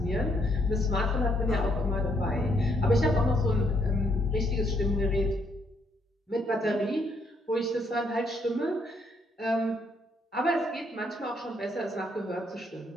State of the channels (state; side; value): normal; both; correlation 0.72